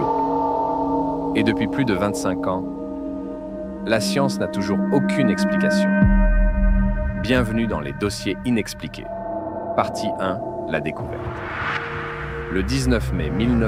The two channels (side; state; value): both; identical; correlation 1.00